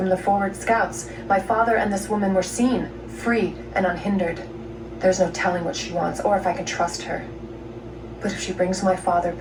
the forward scouts. My father and this woman were seen, free and unhindered. There's no telling what she wants, or if I can trust her. But if she brings my father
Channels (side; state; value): both; identical; correlation 1.00